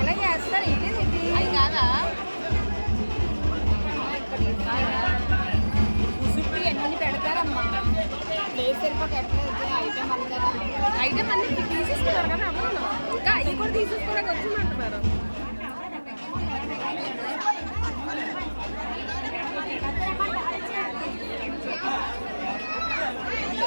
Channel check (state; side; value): inverted; both; correlation -1.00